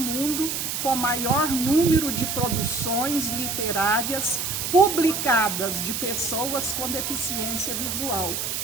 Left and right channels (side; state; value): right; noise; hiss, 2 dB below the sound